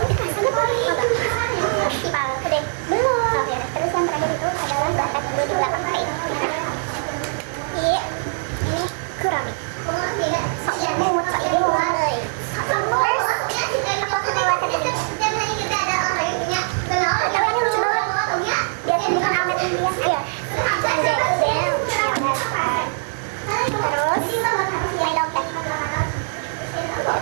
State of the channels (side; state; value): left; silent; digital silence